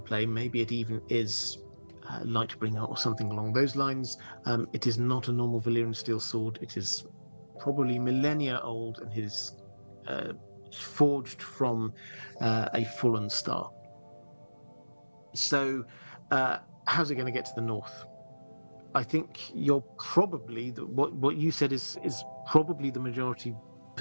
Maybe it even is Lightbringer or something along those lines. It is not a normal Valyrian steel sword. It is probably millennia old and is forged from a fallen star. So how's it going to get to the north? I think you're probably what you said is probably the majority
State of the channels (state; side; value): inverted; both; correlation -1.00